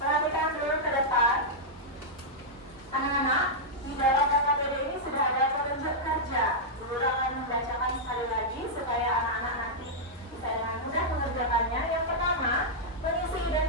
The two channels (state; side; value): normal; both; correlation -0.07